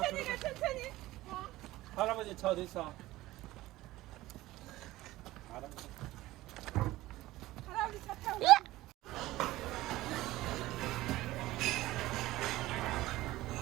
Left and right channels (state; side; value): quieter; left; 17.3 dB